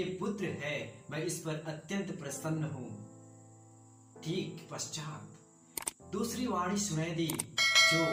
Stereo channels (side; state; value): both; identical; correlation 1.00